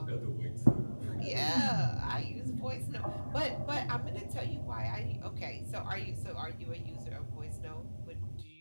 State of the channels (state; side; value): inverted; both; correlation -1.00